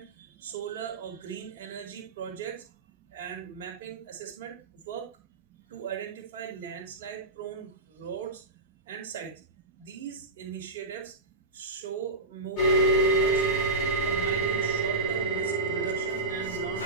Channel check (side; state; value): left; quieter; 3.1 dB